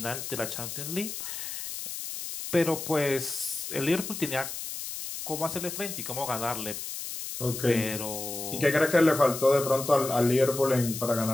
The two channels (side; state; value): left; noise; hiss, 7 dB below the sound